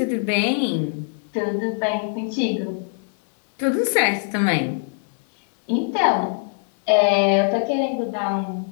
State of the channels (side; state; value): right; silent; digital silence